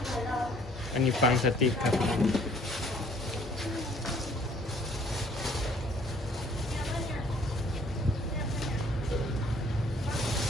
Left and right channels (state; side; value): normal; both; correlation 0.59